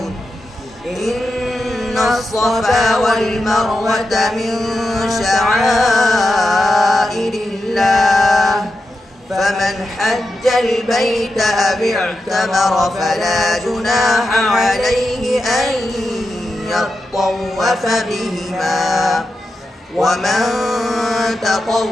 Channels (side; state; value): both; normal; correlation 0.89